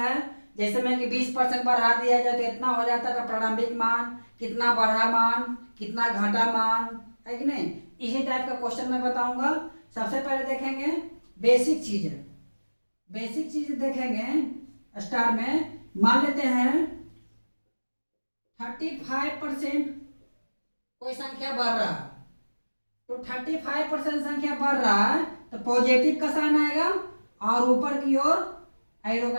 है, जैसे मैं कि 20% बढ़ा दिया जाए तो इतना हो जाता है, प्रारंभिक मान कितना बढ़ा मान कितना घटा मान, है कि नहीं। इसी टाइप का क्वेश्चन मैं बताऊंगा। सबसे पहले देखेंगे बेसिक चीजें, बेसिक चीज देखेंगे। स्टार में मान लेते हैं 35% कोई संख्या बढ़ रहा है, तो 35% संख्या बढ़ रहा है तो पॉजिटिव का साइन आएगा और ऊपर की ओर एरो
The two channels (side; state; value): both; inverted; correlation -1.00